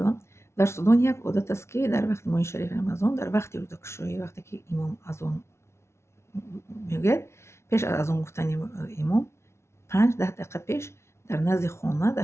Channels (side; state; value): right; late; 0.13 ms